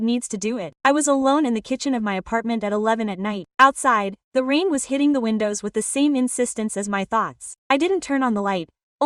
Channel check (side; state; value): both; identical; correlation 1.00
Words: needs to do it. I was alone in the kitchen of my apartment at 11 at night. Outside, the rain was hitting the windows with the same insistence as my thoughts. I didn't turn on the light.